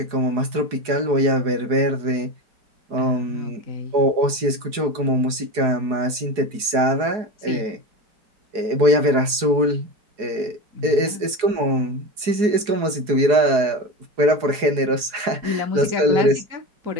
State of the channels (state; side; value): late; left; 4.7 ms